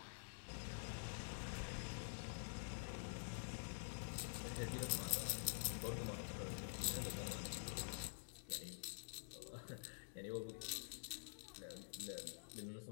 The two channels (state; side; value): silent; right; digital silence